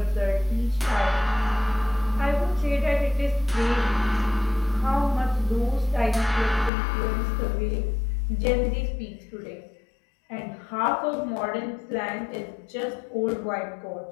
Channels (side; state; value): right; drops out; at 6.7 s